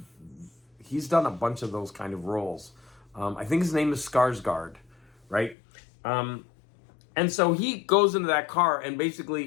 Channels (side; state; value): right; drops out; at 5.6 s